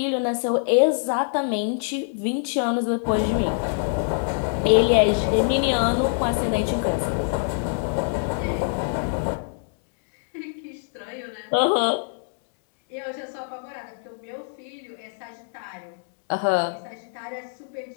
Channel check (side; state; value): right; silent; digital silence